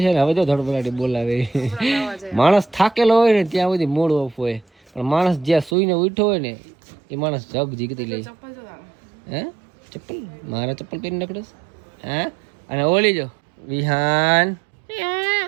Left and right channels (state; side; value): drops out; left; at 5.8 s